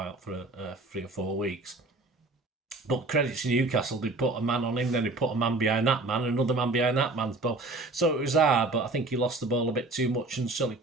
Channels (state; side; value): quieter; left; 3.1 dB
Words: for 3 or 4 weeks. But credit to Newcastle, they put a man on him, then they put a man behind that man, another man behind that man's ball. So it was hard, but I think he lost the ball a bit too much, and certainly